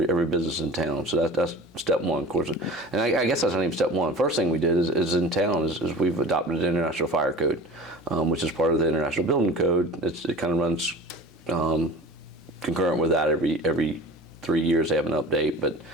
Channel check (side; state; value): both; normal; correlation 0.38